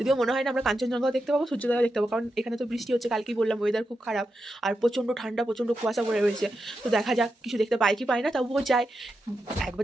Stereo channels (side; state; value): both; normal; correlation 0.87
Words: মনে হয় না আমরা কাঞ্চনজঙ্ঘাও দেখতে পাবো, সূর্যোদয়ও দেখতে পাবো, কারণ এখানে তো বৃষ্টি হচ্ছে। কালকেই বললাম ওয়েদার খুব খারাপ আর প্রচণ্ড ঠান্ডা, প্রচণ্ড কুয়াশা পড়ে রয়েছে। তো দেখা যাক কিছু দেখতে পাই কি পাই না, তবুও যাই।